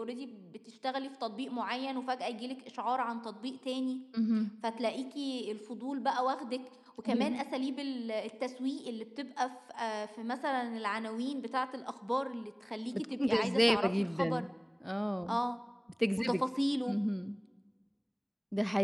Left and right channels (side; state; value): both; identical; correlation 1.00